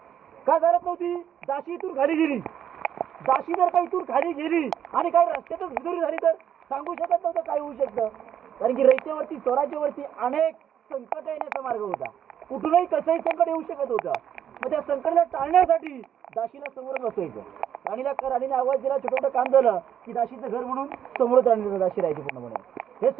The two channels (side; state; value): left; quieter; 9.3 dB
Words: का चालत नव्हती? दाशी इथून खाली गेली. दाशी जर का इथून खाली गेली आणि काही रस्त्यातच पितुरी झाली तर सांगू शकत नव्हतं काय होऊ शकतं. कारण की रयतेवरती स्वराज्यावरती अनेक संकट येण्याचा मार्ग होता. कुठूनही कसंही संकट येऊ शकत होतं. मग त्या संकटाला टाळण्यासाठी दाशीला समोर बसायचं. राणीने आवाज दिला, छोटं मोठं काम झालं की दाशीचं घर म्हणून समोरच राणीला दाशी राहायची पूर्णपणे. हे